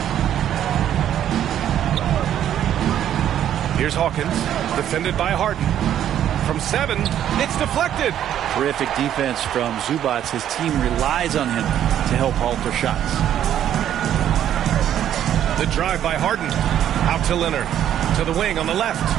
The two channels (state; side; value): quieter; left; 10.7 dB